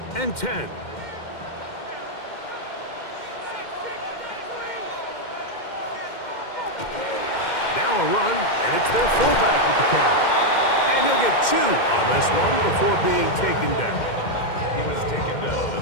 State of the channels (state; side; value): late; right; 2.1 ms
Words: and 10. Now a run, and it's their fullback with the catch. And he'll get 2 on this one before being taken down. He was taken down at